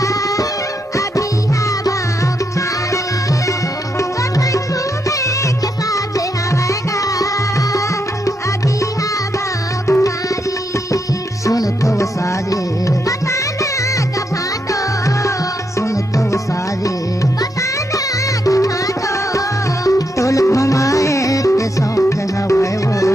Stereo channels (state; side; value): normal; both; correlation 0.80